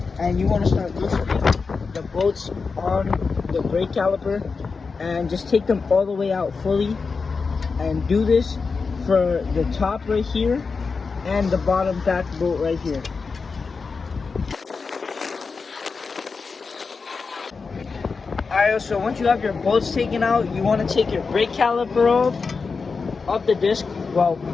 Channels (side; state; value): right; quieter; 4.8 dB